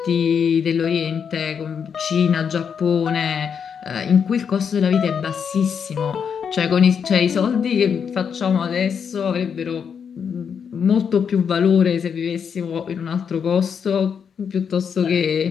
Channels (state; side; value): quieter; right; 7.0 dB